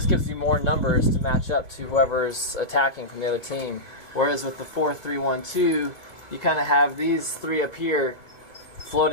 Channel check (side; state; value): right; late; 2.4 ms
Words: gives you more numbers to match up to whoever's attacking from the other team. Whereas with the 4-3-1-2, you kind of have these 3 up here